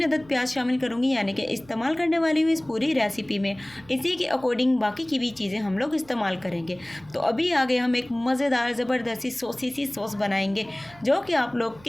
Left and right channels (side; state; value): right; noise; hum, 25 dB below the sound